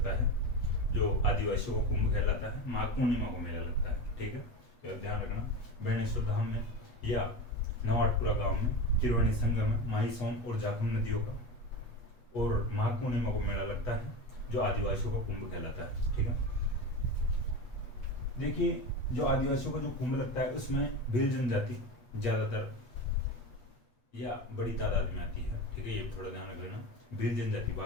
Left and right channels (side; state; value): right; late; 8.2 ms